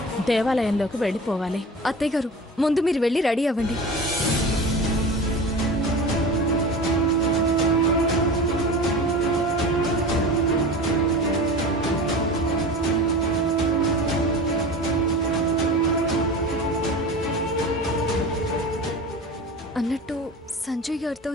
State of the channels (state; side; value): normal; both; correlation 0.33